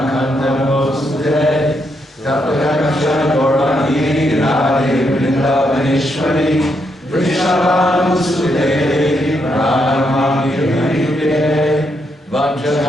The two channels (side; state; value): both; normal; correlation 0.79